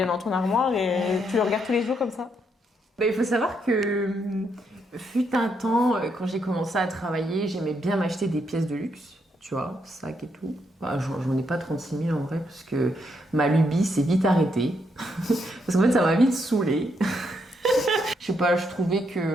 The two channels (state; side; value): normal; both; correlation 0.77